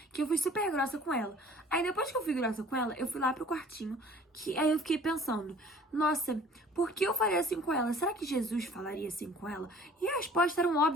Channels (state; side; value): normal; both; correlation 0.51